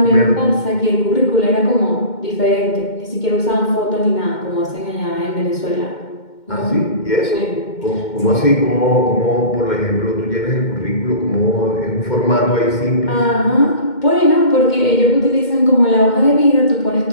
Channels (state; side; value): late; right; 2.1 ms